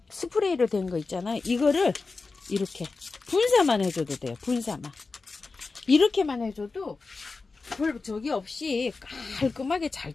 스프레이로 된 거 있잖아요. 이거를 이렇게 분사만 해줘도 돼요. 분사만. 이렇게만 해줘도 별 적이 없이 깔끔하게 잘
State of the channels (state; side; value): quieter; right; 4.0 dB